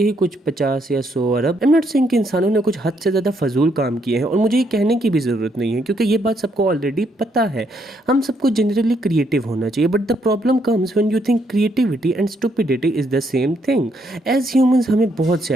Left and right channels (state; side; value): normal; both; correlation 0.73